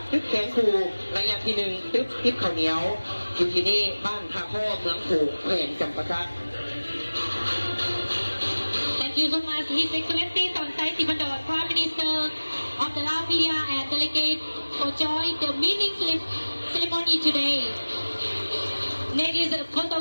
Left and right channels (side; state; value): both; inverted; correlation -1.00